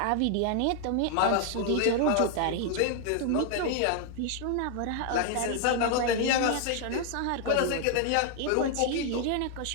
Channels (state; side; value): different; both; correlation 0.00